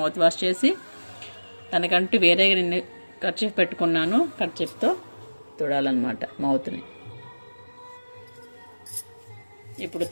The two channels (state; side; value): inverted; both; correlation -1.00